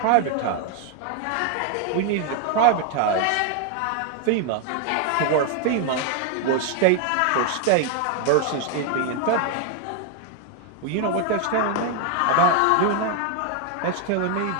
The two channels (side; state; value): both; different; correlation 0.01